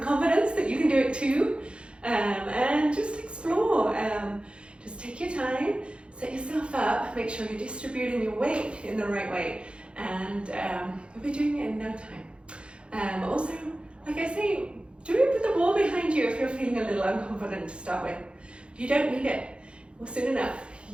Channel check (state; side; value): late; left; 0.057 ms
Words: that you can do it too. And just explore. Just take your time, set yourself up, make sure you're distributing your weight in the right way, and you'll be doing it in no time. Also, like I say, do it with the wall behind you if you're feeling a little unconfident to start with. If you don't need it, well, soon enough